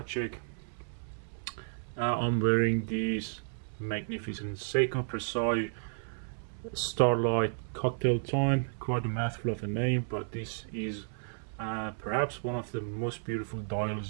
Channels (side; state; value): left; silent; 55 dB below the other